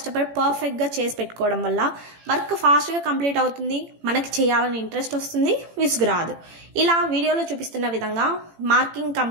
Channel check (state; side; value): late; left; 18 ms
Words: పర్ఫెక్ట్గా చేసి పెట్టుకోవడం వల్ల వర్క్ ఫాస్ట్గా కంప్లీట్ అవుతుంది, మనకి చేయాలని ఇంట్రెస్ట్ వస్తుంది, విసుగు రాదు. ఇలా వీడియోలో చూపిస్తున్న విధంగా మార్కింగ్